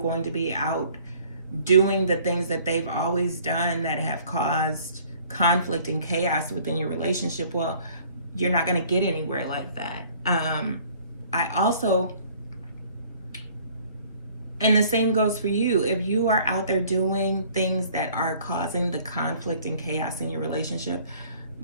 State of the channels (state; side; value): inverted; both; correlation -0.56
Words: to be out doing the things that they've always done that have caused conflict and chaos within your relationship, well, you're not going to get anywhere like that. I also, and the same goes for you. If you are out there doing things that are causing the conflict and chaos in your relationship,